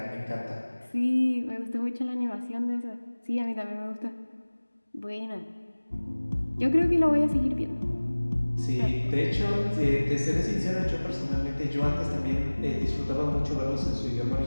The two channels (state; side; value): inverted; both; correlation -1.00